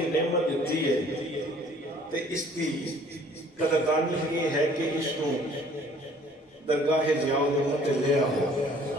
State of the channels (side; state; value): both; normal; correlation 0.55